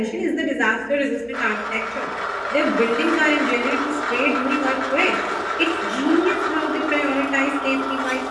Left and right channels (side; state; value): right; noise; hum, 28 dB below the sound